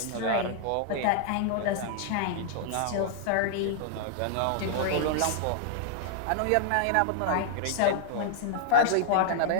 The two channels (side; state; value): both; different; correlation -0.01